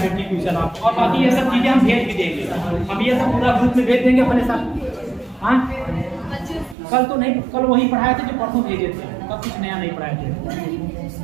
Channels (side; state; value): left; drops out; at 6.8 s